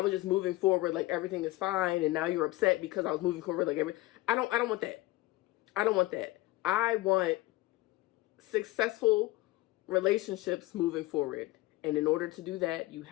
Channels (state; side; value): quieter; right; 18.8 dB